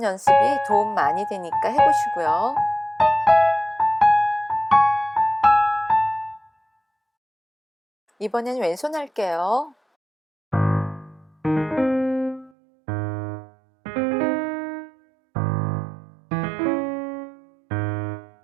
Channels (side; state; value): left; drops out; at 12.5 s